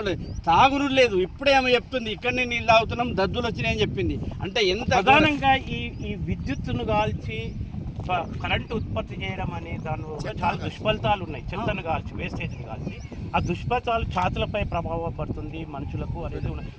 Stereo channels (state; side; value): identical; both; correlation 1.00